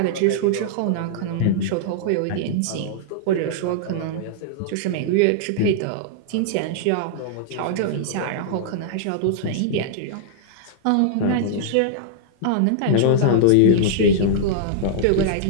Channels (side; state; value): both; different; correlation -0.01